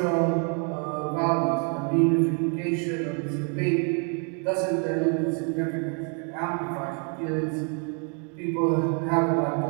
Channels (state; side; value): quieter; left; 39.5 dB